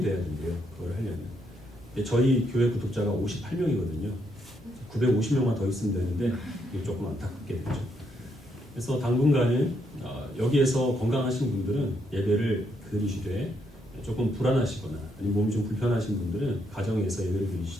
돼야 된대요. 그걸 하려면. 저희 교회 구독자가 58명이거든요. 950명만 더 있으면 되는데 이게 조금 안타깝게 되죠. 그래서 당분간은 여기에서 건강하신 분들은 예배를 드리시되 조금 불안하시거나 아니면 몸이 좀 불편하신 분들은 가정에서 예배를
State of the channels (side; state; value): both; normal; correlation 0.76